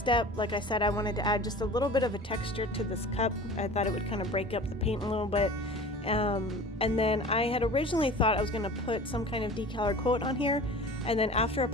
Like I said, I wanted to add just a little bit of a texture to this cup. I thought it would kind of break up the paint a little bit. And then I had originally thought I was gonna put some kind of decal or quote on here. And then after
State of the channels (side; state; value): both; normal; correlation 0.39